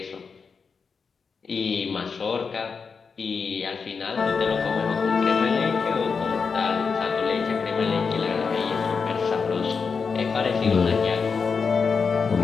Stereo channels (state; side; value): quieter; right; 5.4 dB